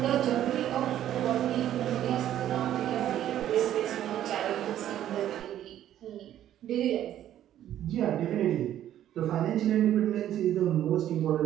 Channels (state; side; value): quieter; left; 11.7 dB